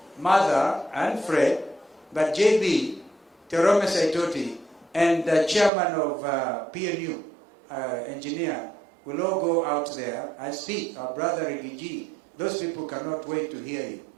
Mother and Fred, but JB, Terome Saitoti, and the chairman of PNU, engineer, will all go out there and speak. Our brother Rigiji, those people cannot wait to hear you.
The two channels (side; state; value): left; drops out; at 5.7 s